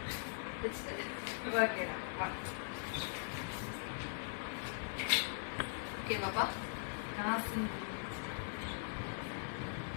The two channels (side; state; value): right; silent; digital silence